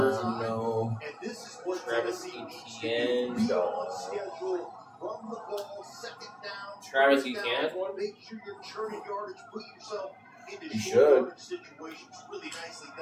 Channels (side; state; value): both; identical; correlation 1.00